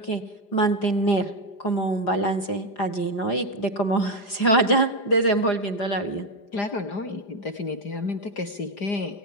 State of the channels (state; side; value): late; right; 5.0 ms